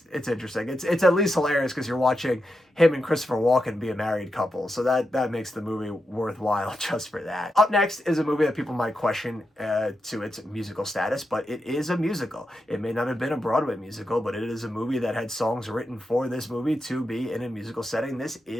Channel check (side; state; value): both; normal; correlation 0.87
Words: It's at least hilarious because you're watching him and Christopher Walken be a married couple, so that makes the movie worthwhile just for that. Up next is a movie that people might question to its musical status, but it is a musical. It may not have been a Broadway musical, but it is a movie that had songs written for this movie to be in a musical setting. This